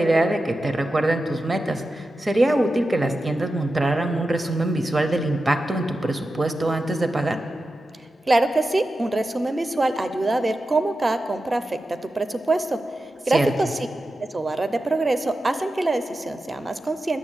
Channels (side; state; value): both; normal; correlation 0.92